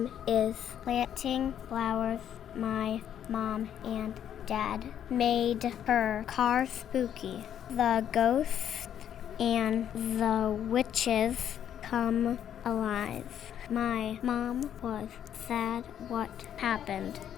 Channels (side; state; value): right; quieter; 9.8 dB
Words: is planting flowers. My mom and Dad made her car spooky. The ghosts and the witches come alive. My mom was sad what happened.